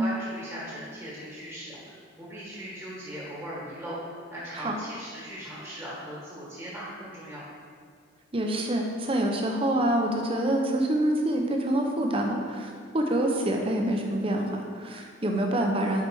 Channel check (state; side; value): normal; both; correlation 0.59